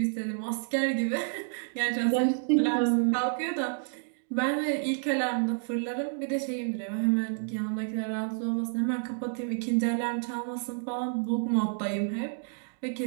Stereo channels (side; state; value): left; silent; digital silence